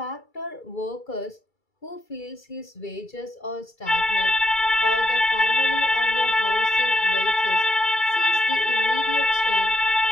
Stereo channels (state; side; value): late; right; 2.3 ms